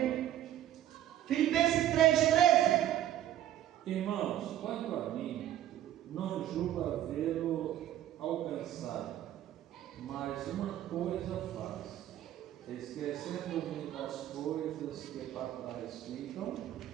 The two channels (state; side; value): quieter; left; 12.2 dB